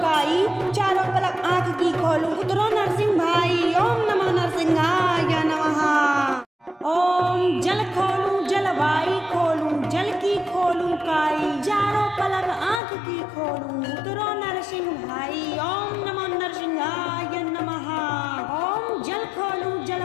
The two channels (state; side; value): drops out; right; at 12.8 s